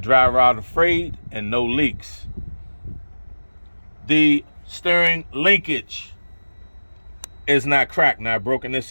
dry rot afraid, and no leaks. The steering linkage is not cracked, not broken, and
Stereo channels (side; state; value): both; inverted; correlation -1.00